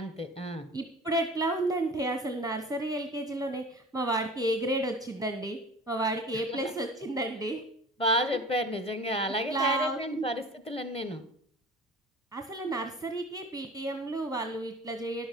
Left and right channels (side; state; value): both; normal; correlation 0.40